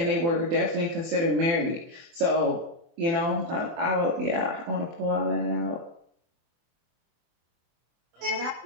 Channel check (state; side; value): late; left; 24 ms